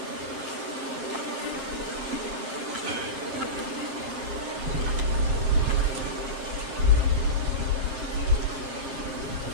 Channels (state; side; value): late; left; 7.6 ms